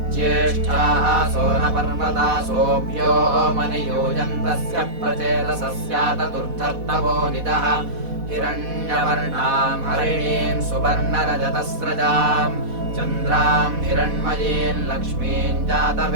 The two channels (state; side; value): late; left; 4.1 ms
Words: ज्येष्ठाः सोनपर्वतासोऽभ्यो मनियूयन्तस्य प्रचेतसस्यातदुर्धर्तवोनिदः हिरण्यवर्णाम् हरिणीम् सुवर्णरजतस्रजाम् चन्द्राम् हिरण्मयीम् लक्ष्मीम्